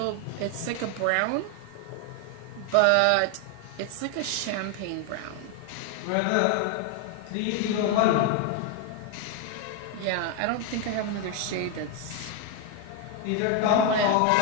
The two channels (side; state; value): both; different; correlation 0.01